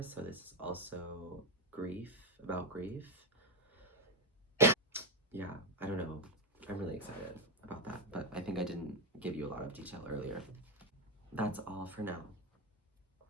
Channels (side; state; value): both; normal; correlation 0.10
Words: So this is also about grief. Yeah, I don't know. I'm really excited about that, but I think I didn't give you a lot of detail earlier. That's all for now.